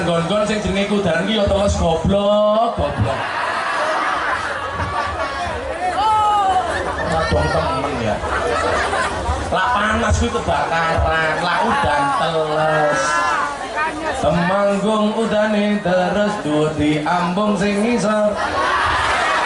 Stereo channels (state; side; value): identical; both; correlation 1.00